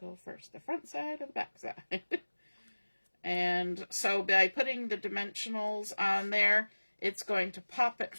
first? The front side or the back side? And so by putting the dimensionals on there, it's going to pop it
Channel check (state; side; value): inverted; both; correlation -1.00